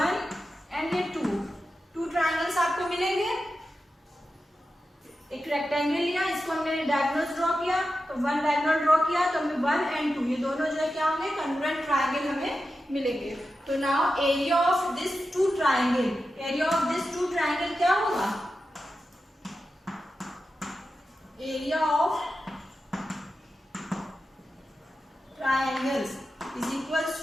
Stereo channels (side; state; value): both; normal; correlation 0.91